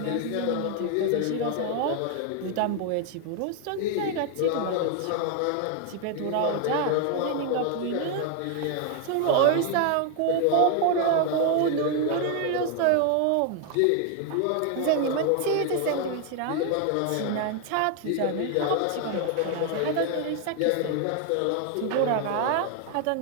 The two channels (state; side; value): different; both; correlation 0.00